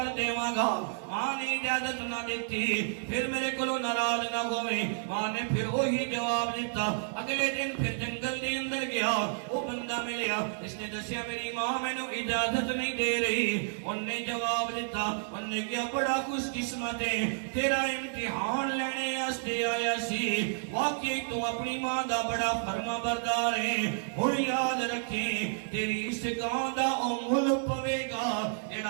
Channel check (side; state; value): left; silent; 57 dB below the other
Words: دیواں گا. ماں نے اجازت نہ دیتی پھر میرے کولوں ناراض نہ ہوئے. ماں نے پھر وہی جواب دیتا. اگلے دن پھر جنگل دے اندر گیا, وہ بندہ ملیا, اس نے دسیا میری ماں میں نے اجازت نہیں دے رہی. انہوں نے جواب دیتا, انہوں نے کیا بڑا خوش قسمت ہے, تیرا امتحان لینے آستے آیا سی, واقعی تو اپنی ماں دا بڑا فرما بردار ہے. ہن یاد رکھیں تیری اس گاں دا او مل پوے گا